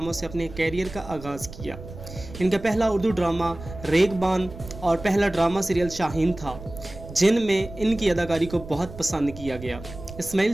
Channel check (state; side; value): noise; right; rumble, 14 dB below the sound